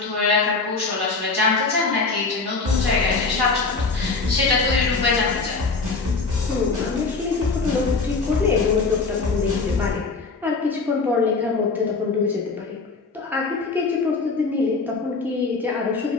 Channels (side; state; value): right; quieter; 4.1 dB